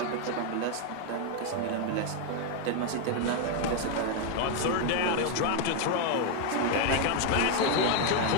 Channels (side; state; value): both; different; correlation 0.01